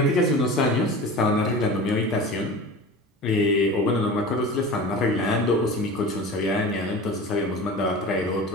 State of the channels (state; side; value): normal; both; correlation 0.35